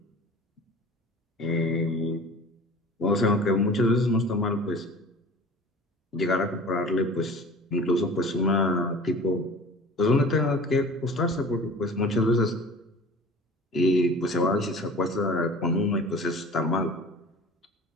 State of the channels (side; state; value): both; normal; correlation 0.42